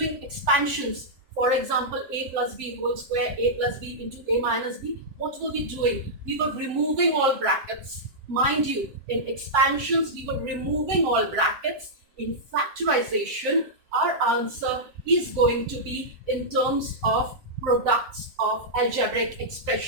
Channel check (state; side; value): late; left; 7.5 ms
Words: expansions, for example, a plus b whole square, a plus b into a minus b, what were we doing? We were removing all brackets. Mind you, in expansions, we were removing all brackets. In factorization, our answer is going to be in terms of products of algebraic